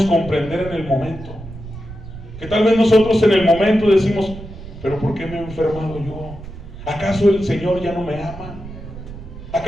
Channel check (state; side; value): noise; right; rumble, 13 dB below the sound